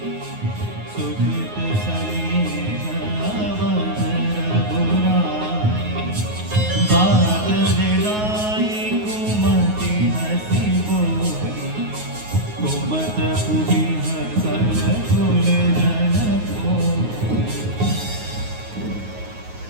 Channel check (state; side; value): late; left; 9.5 ms